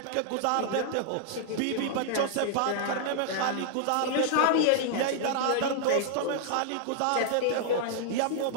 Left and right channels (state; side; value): different; both; correlation -0.01